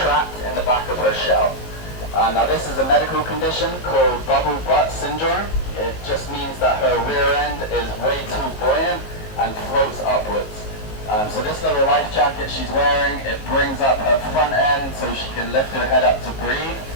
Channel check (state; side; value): late; right; 19 ms